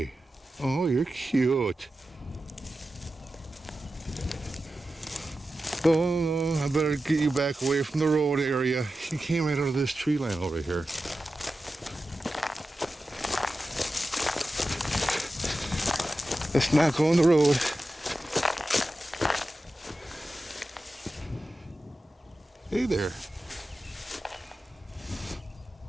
Oh, you're cute. Oh, I better get you back away from the road area. You came right out of this tree line over here. Let's not go on the road. Hey there.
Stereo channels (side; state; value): both; normal; correlation 0.93